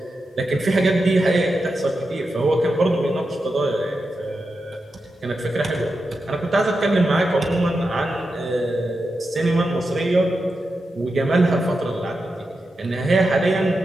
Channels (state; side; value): normal; both; correlation 0.89